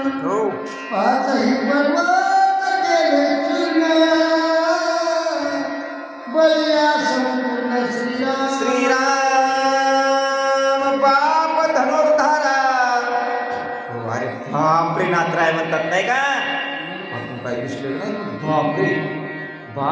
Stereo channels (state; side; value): identical; both; correlation 1.00